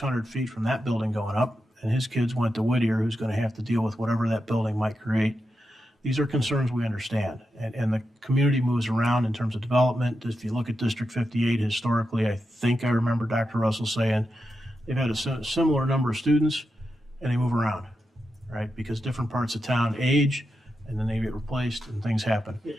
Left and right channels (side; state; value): both; normal; correlation 0.88